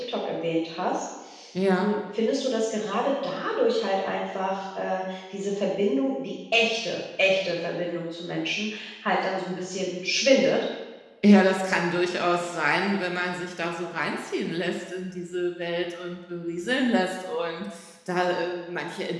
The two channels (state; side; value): identical; both; correlation 1.00